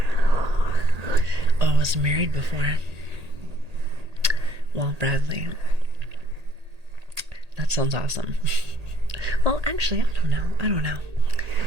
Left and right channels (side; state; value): left; late; 1.8 ms